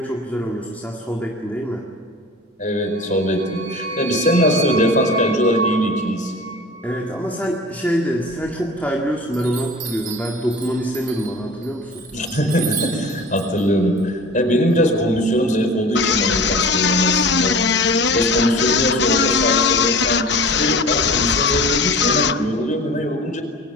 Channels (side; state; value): both; normal; correlation 0.38